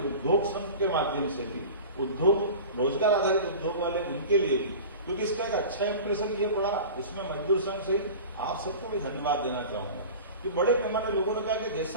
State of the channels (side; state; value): both; inverted; correlation -0.35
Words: संघ के माध्यम से भी उद्योग रोजगार आधारित उद्योग वाले उनके लिए भी, क्योंकि इसका एक अच्छा इंप्रेशन ये पड़ा। इसमें मजदूर संघ से आप सबको भी धन्यवाद देना चाहूंगा कि बड़े पैमाने लोगों ने कहा कि